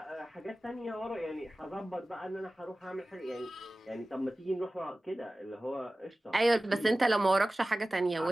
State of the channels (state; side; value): normal; both; correlation 0.97